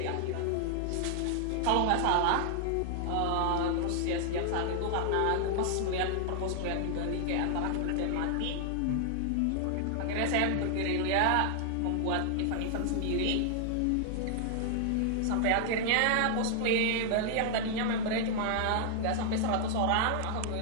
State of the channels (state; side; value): different; both; correlation 0.00